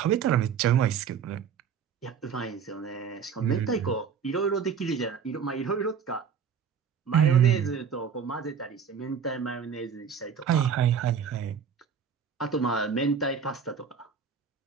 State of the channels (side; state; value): left; quieter; 6.9 dB